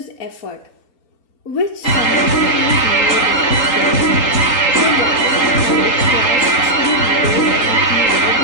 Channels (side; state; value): right; late; 3.8 ms